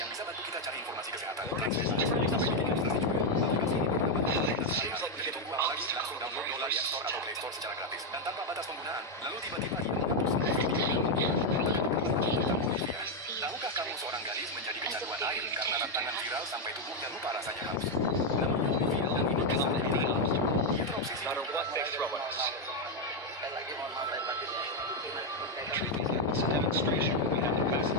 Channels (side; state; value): both; normal; correlation 0.03